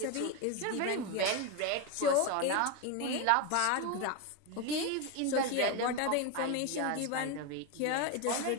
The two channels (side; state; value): both; different; correlation 0.02